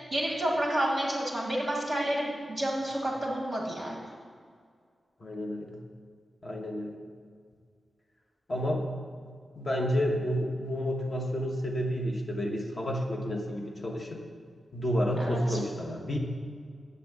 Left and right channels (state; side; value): normal; both; correlation 0.88